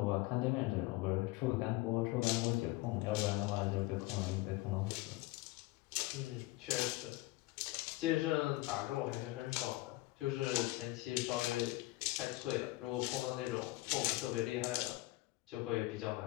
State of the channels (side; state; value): right; quieter; 19.9 dB